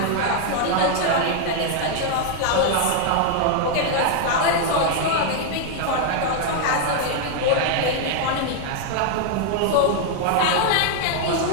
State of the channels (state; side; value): different; both; correlation 0.00